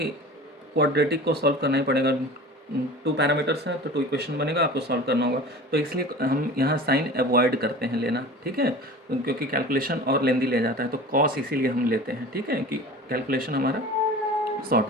क्वाड्रेटिक को सॉल्व करना ही पड़ेगा। 2 पैरामीटर्स हैं तो 2 इक्वेशन बनेगा, आपको सॉल्व करना होगा। तो इसलिए हम यहाँ साइन अवॉइड करते हैं लेना, ठीक है, क्योंकि कैलकुलेशन और लेंदी ले जाता है, तो कॉस इसीलिए हम लेते हैं, ठीक है, कि कैलकुलेशन हमारा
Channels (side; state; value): both; normal; correlation 0.38